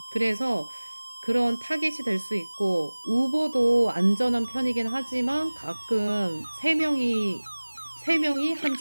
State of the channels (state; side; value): inverted; both; correlation -1.00